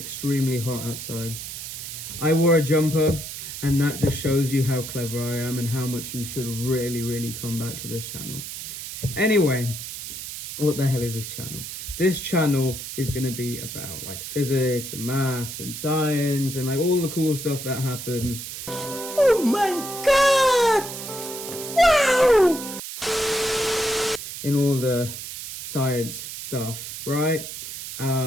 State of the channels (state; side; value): noise; right; hiss, 8 dB below the sound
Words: hot outside. I wore a jumper, and that just shows you how clever I am and how much you should really come back to this channel. Anyway, what the hell is this channel? This channel is going to be about like physics and maths and science and like all the cool stuff that happens. Oh my god! Wow! In all the science stuff, right?